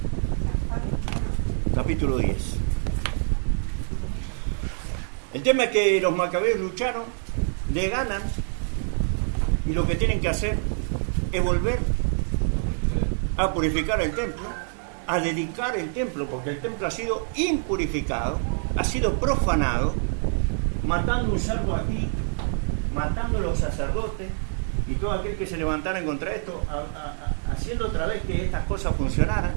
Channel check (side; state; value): left; silent; 61 dB below the other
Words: Capítulo 10. El tema es que los macabeos lucharon, le ganan, y lo que tienen que hacer es volver a purificar el templo, a dedicar el templo, porque el templo ha sido impurificado, ha sido profanado, matando un cerdo aquí, matando a los sacerdotes y todo aquel que se levantara en contra de esto, haciendo otra vez que estas cosas funcionaran.